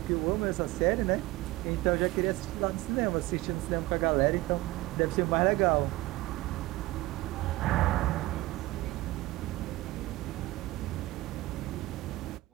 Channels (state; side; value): quieter; left; 19.2 dB